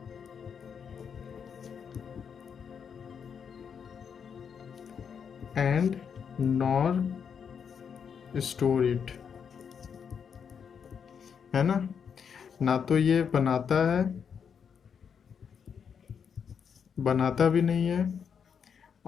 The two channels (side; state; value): right; quieter; 7.0 dB